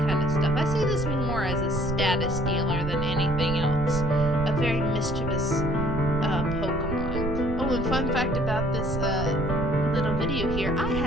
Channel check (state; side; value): noise; right; rumble, 5 dB below the sound